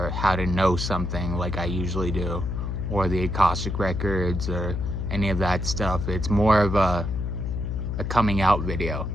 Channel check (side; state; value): left; noise; hum, 2 dB below the sound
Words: how to know something like I usually do, or the Akashic Records, or any of that stuff. It's more of a coming out video.